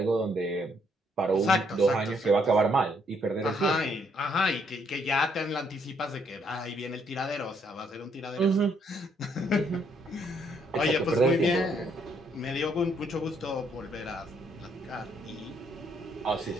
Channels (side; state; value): both; normal; correlation 0.70